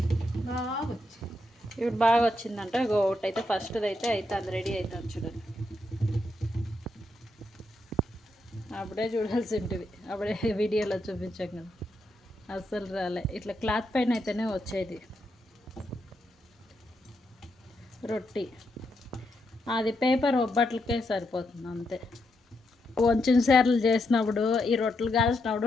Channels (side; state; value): both; normal; correlation 0.81